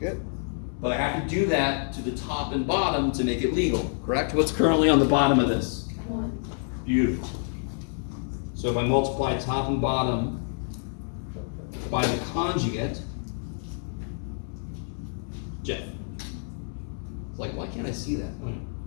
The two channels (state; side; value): silent; right; 60 dB below the other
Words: But I have to do that to the top and bottom to make it legal, correct? What's currently on the bottom of this? 1. Beautiful. So if I multiply top and bottom by the conjugate, Jeff. It's like, why can't I see that?